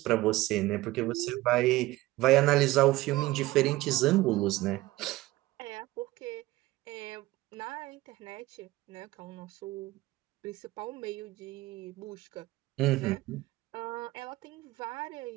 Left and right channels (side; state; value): left; quieter; 18.6 dB